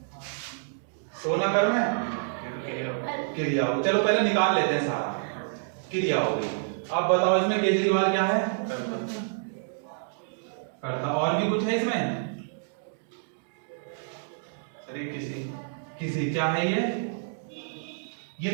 सोना कर्म है, क्रिया हो। चलो पहले निकाल लेते हैं सारा, क्रिया हो गई। अब बताओ इसमें केजरीवाल क्या है, करता। और भी कुछ है इसमें, अरे किसी क्या है ये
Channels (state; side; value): silent; left; digital silence